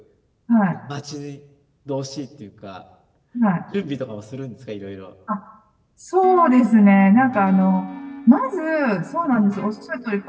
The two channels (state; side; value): identical; both; correlation 1.00